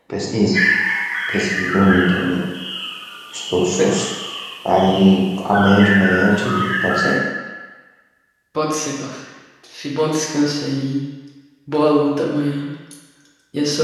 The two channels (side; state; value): both; identical; correlation 1.00